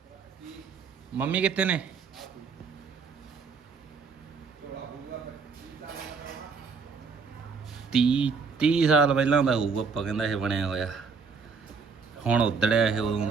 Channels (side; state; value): left; quieter; 5.3 dB